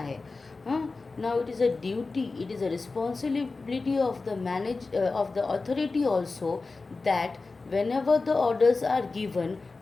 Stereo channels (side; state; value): right; quieter; 3.8 dB